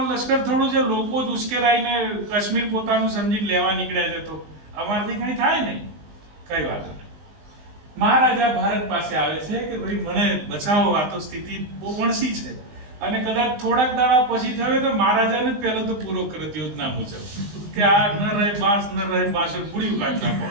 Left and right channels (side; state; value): left; late; 20 ms